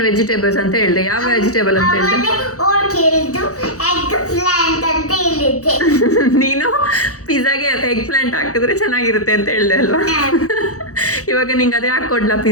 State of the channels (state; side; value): late; right; 0.65 ms